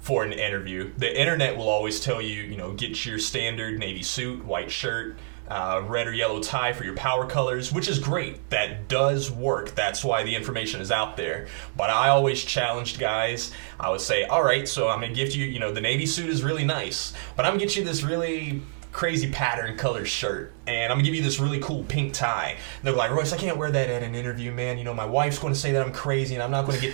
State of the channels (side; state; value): left; silent; digital silence